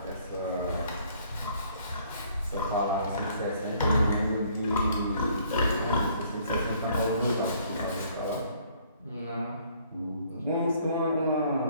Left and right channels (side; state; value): both; inverted; correlation -0.61